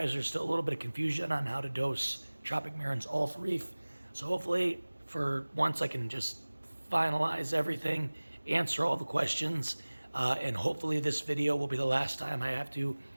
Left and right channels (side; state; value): both; inverted; correlation -1.00